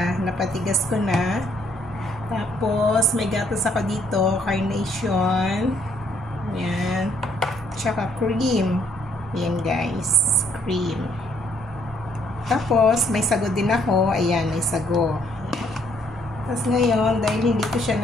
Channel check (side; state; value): both; normal; correlation 0.68